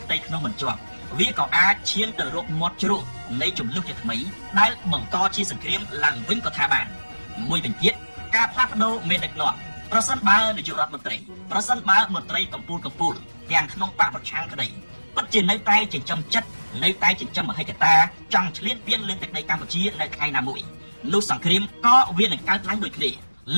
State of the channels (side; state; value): both; inverted; correlation -1.00